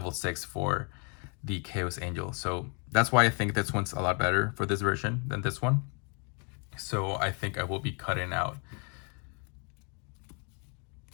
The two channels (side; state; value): right; quieter; 37.1 dB